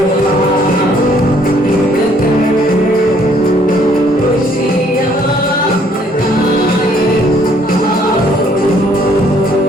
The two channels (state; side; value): normal; both; correlation 0.64